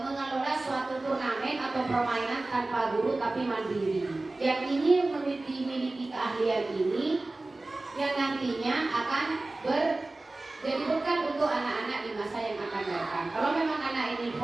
suatu turnamen atau permainan tanpa guru tapi mandiri. Yang ini memiliki keahlian ini yang nantinya akan jadi bekal untuk anak-anak di masa yang akan datang. Kalau memang anak ini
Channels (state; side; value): quieter; left; 3.0 dB